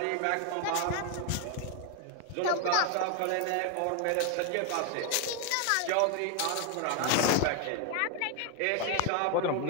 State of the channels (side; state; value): both; different; correlation 0.01